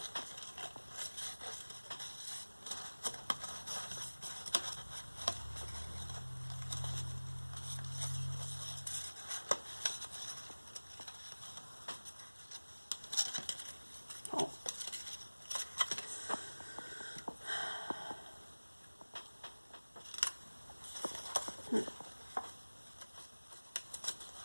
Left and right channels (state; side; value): inverted; both; correlation -1.00